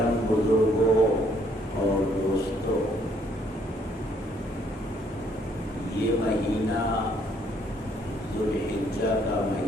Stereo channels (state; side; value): normal; both; correlation 0.67